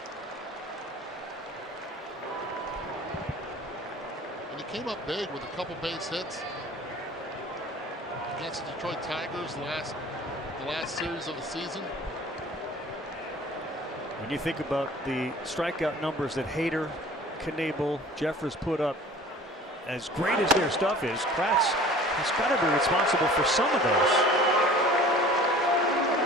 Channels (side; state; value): both; normal; correlation 0.45